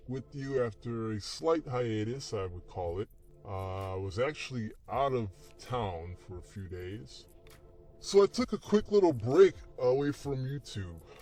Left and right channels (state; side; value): identical; both; correlation 1.00